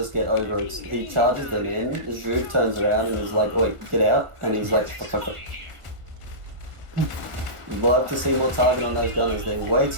get over it. He charges them in, the Juve turns around and is like, wait, get out, and he's like, fuck. You'd love to see more target on those gunners, they're way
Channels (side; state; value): left; late; 1.5 ms